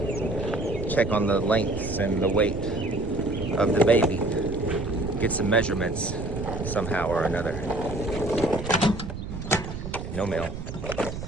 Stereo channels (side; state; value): right; noise; rumble, 8 dB below the sound